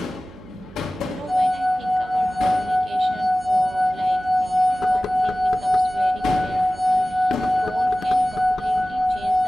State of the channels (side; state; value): right; noise; hum, 20 dB below the sound